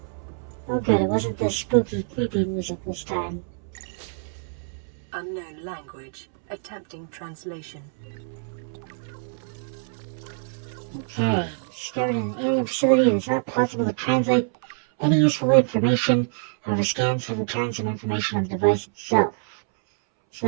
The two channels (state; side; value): silent; left; 62 dB below the other